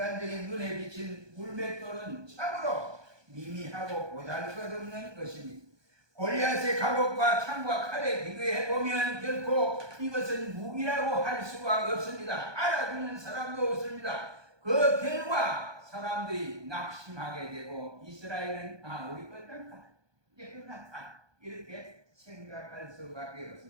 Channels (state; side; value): late; left; 1.2 ms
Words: 눈에 비친 물맷돌은 참으로 미미하고 보잘것없는 것입니다. 골리앗의 갑옷과 창과 칼에 비교해 보면 결코 이것은 무기라고 할 수가 없습니다. 알아듣는 사람도 없습니다. 그 결과 사람들이 낙심하게 되고 이스라엘은 우리 끝났다, 이제 끝났다, 이렇게 생각할 수밖에